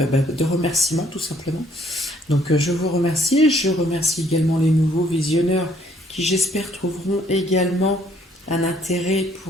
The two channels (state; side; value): normal; both; correlation 0.64